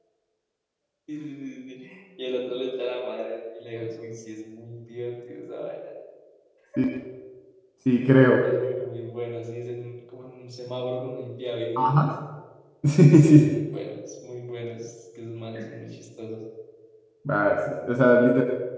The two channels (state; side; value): identical; both; correlation 1.00